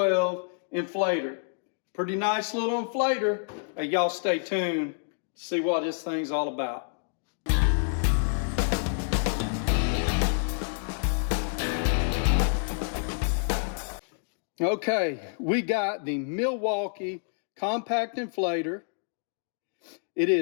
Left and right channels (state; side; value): silent; right; digital silence